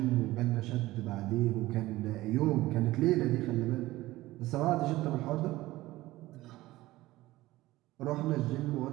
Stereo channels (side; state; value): left; quieter; 17.6 dB